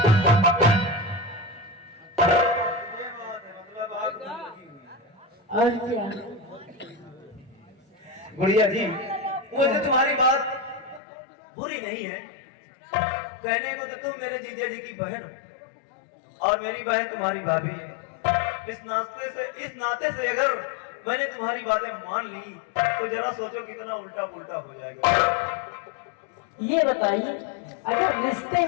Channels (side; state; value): right; drops out; at 11.0 s